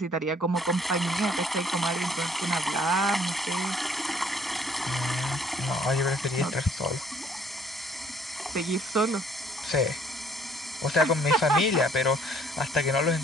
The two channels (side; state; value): both; normal; correlation 0.61